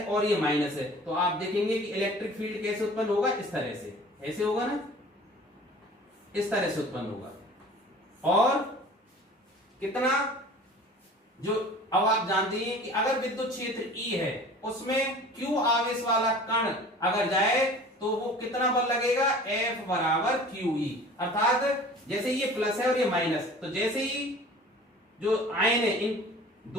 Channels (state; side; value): normal; both; correlation 0.44